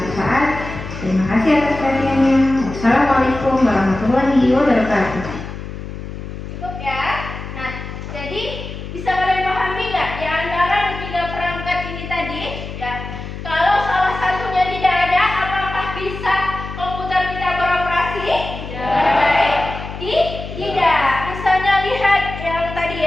Terima kasih atas perhatiannya. Wassalamualaikum warahmatullahi wabarakatuh. Cukup ya. Nah, jadi bisa kalian pahami nggak di antara ketiga perangkat ini tadi? Ya, kalau salah satunya tidak ada, apakah bisa komputer kita beroperasi? Tidak. Tidak. Misalnya lihat yang tadi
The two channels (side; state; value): left; noise; hum, 9 dB below the sound